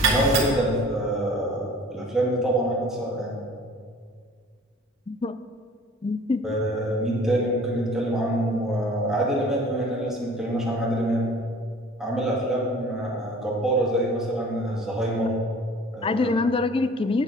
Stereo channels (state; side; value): normal; both; correlation 0.48